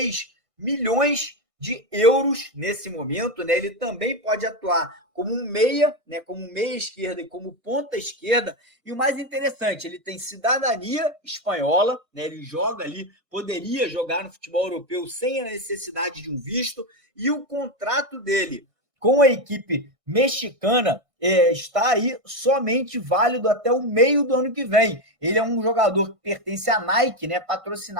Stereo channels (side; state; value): left; late; 1.6 ms